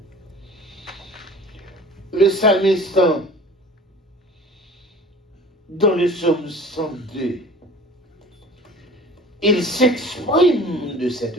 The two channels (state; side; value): normal; both; correlation 0.44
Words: le psalmiste, dans le psaume 102, il s'exprime de cette